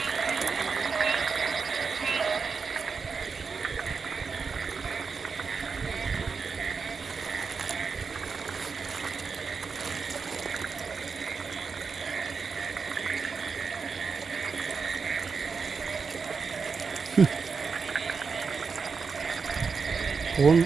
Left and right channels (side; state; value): left; quieter; 5.2 dB